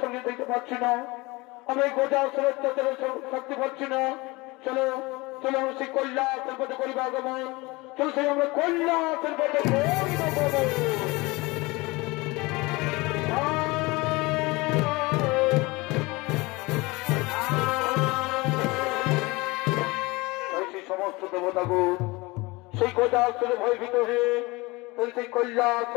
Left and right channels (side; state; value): right; quieter; 23.5 dB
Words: সঙ্গে দেখতে পাচ্ছি না, আমরা এই গোটা অত্যাচারের শক্তি পাচ্ছি না। চলো চলো আমরা সেই কৈলাসের পথে করিব আগমন, চলো সেই আমরা কৈলাসের পথে সমস্ত দেবতাগুণ সেই কৈলাসের ভয়ভীত হয়ে সেই